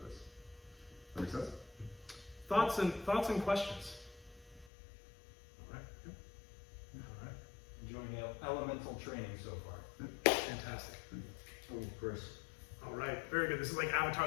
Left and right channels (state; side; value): drops out; right; at 4.7 s